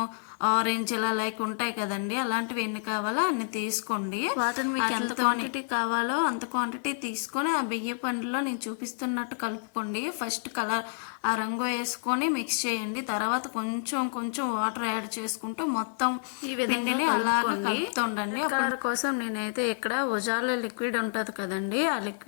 ఆరెంజ్ ఇలా లైక్ ఉంటాయి కదండి, అలాంటివి ఎన్ని కావాలో అన్ని తీసుకోండి. వాటిని మీకు ఎంత క్వాంటిటీ కావాలో అంత క్వాంటిటీ తీసుకొని ఆ బియ్య పండులో నేను చూపిస్తున్నట్టు కలుపుకోండి. ఫస్ట్ కలర్ ఆ రంగు వేసుకొని మిక్స్ చేయండి. తర్వాత కొంచెం కొంచెం వాటర్ యాడ్ చేసుకుంటూ మొత్తం ఈ విధంగా అలాగే కలుపుతుండండి. కలర్ కోసం నేనైతే ఇక్కడ ఉజాల లిక్విడ్ ఉంటుంది కదండి, ఆ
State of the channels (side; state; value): right; silent; digital silence